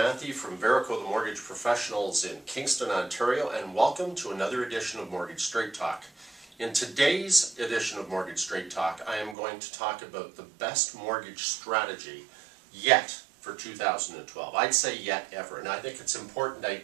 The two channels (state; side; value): drops out; left; at 9.3 s